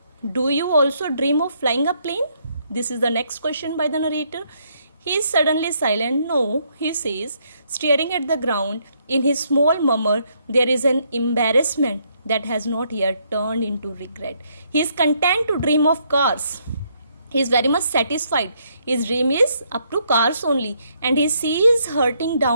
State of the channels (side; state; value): both; inverted; correlation -0.72